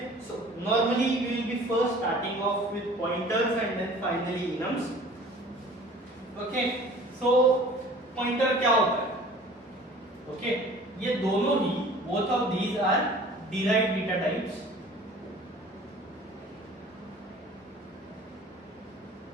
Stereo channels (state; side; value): normal; both; correlation 0.47